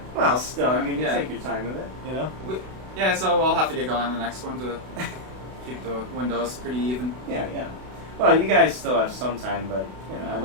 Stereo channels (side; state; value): left; late; 32 ms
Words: well, still, I mean, you take your time with it, you know. Yeah, so we'll have to get going on the next one to keep the windows pretty even. Yeah. Well, you guys still have some time, but you know,